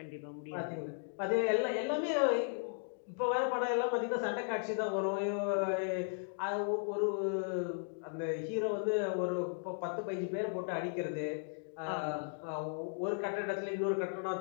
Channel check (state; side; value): silent; right; digital silence